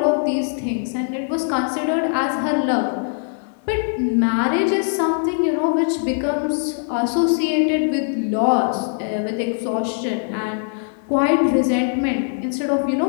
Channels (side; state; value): right; silent; 62 dB below the other